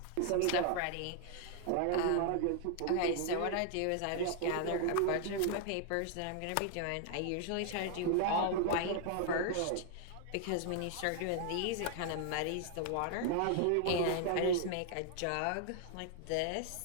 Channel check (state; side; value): different; both; correlation 0.00